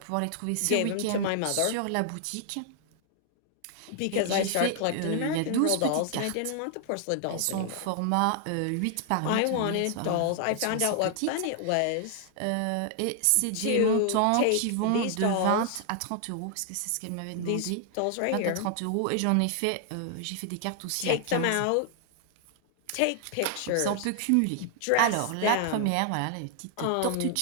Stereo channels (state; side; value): different; both; correlation 0.00